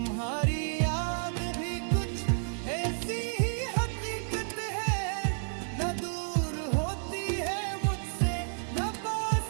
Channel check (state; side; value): silent; left; 57 dB below the other